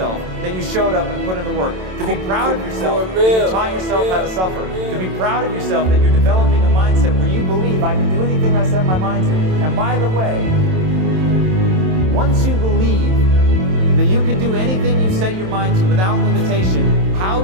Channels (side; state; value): left; late; 27 ms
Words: that you showed up and put in the work. To be proud of yourself that you taught yourself how to suffer. To be proud of yourself that you're developing a mindset where you believe I can do anything I set my mind to. And by the way, once you believe that you can do anything you set your mind to without limitation, how